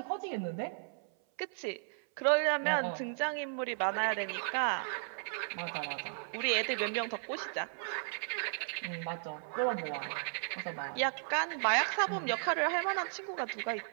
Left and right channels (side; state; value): left; silent; 54 dB below the other